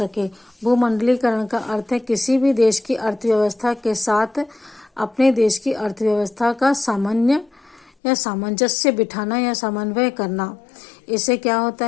भूमंडलीकरण का अर्थ है किसी भी देश की अर्थव्यवस्था के साथ अपने देश की अर्थव्यवस्था का सामान्य या सामंजस्य बिठाना या समन्वय करना। इससे क्या होता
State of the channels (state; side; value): drops out; right; at 7.9 s